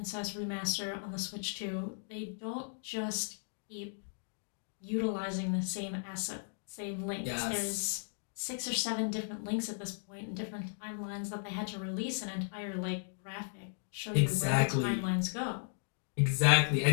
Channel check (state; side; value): silent; right; digital silence